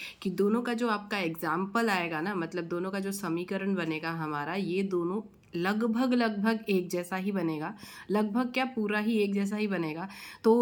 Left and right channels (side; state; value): both; identical; correlation 1.00